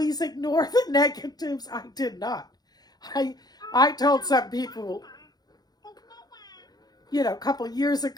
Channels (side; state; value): right; late; 0.19 ms